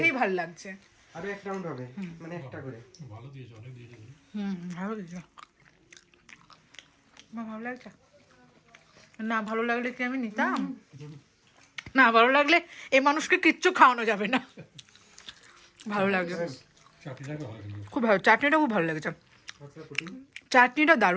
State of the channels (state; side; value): identical; both; correlation 1.00